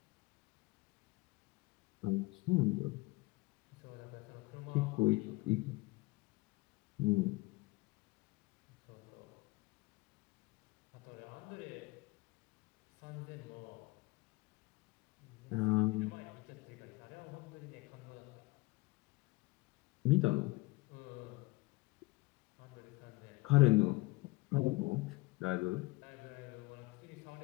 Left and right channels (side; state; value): right; quieter; 22.3 dB